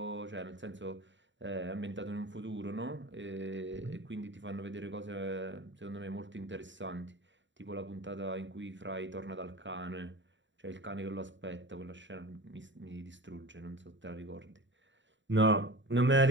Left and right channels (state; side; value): late; left; 0.54 ms